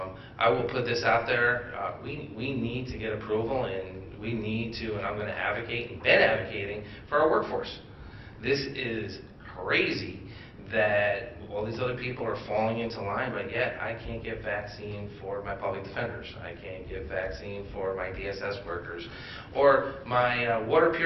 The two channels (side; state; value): both; identical; correlation 1.00